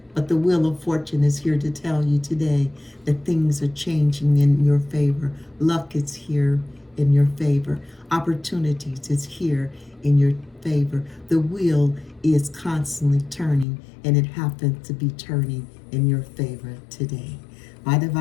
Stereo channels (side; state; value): right; drops out; at 13.7 s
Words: but the wheel of fortune is here to tell you today that things are changing in your favor. Luck is here in your favor. Opportunities is here in your favor. The wheel is constantly turning, and it happens to be turning in your favor today. My